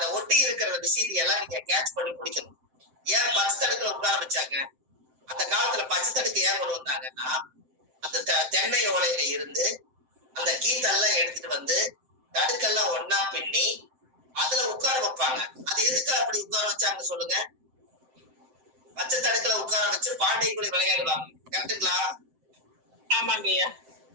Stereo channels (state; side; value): late; left; 7.7 ms